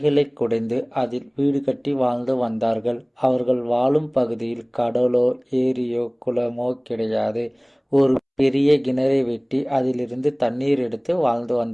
குடைந்து அதில் வீடு கட்டி வாழ்ந்து வந்தார்கள். அவர்கள் வாழும் பகுதியில் கடலோ ஏரியோ குளமோ கிடையாது. ஒரு பெரிய கிணறை வெட்டி அதிலிருந்து தண்ணீர் எடுத்து வாழ்ந்து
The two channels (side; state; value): both; identical; correlation 1.00